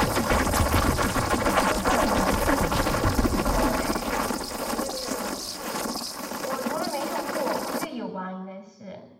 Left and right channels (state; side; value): identical; both; correlation 1.00